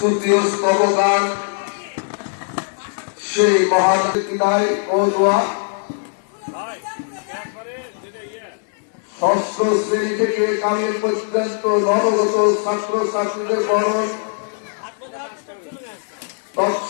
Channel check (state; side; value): silent; right; digital silence